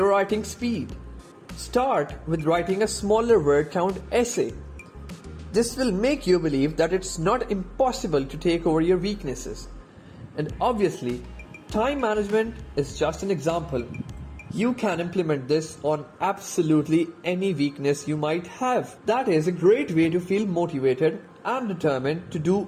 writing speed. Start with writing a smaller word count essay. This will make you believe that it's not impossible to take over your weaknesses. And obviously, time management is just an example. You can implement this on absolutely any weakness you might have. That is a great way to feel motivated and determined to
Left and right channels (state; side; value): identical; both; correlation 1.00